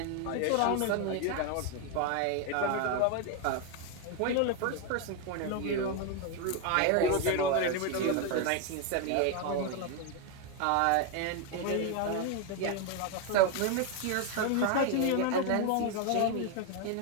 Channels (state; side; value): different; both; correlation 0.01